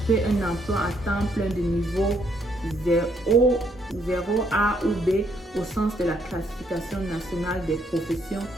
un emploi à temps plein de niveau 0A ou B au sens de la classification nationale des professions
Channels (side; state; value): both; normal; correlation 0.71